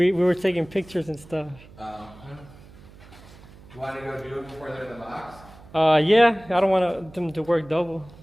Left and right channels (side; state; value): right; noise; hum, 21 dB below the sound